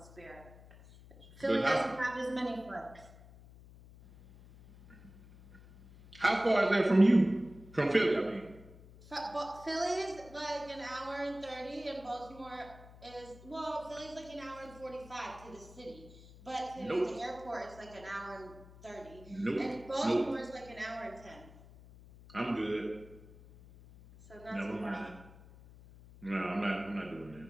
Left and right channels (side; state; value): left; noise; hum, 20 dB below the sound